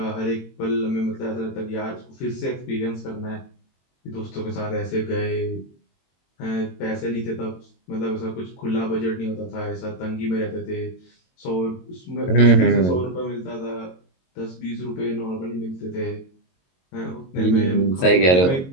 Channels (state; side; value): late; right; 22 ms